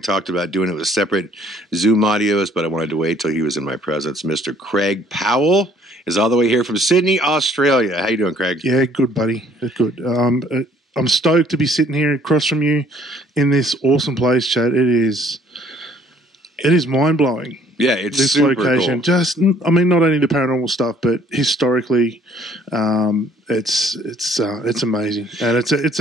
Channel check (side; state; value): both; normal; correlation 0.60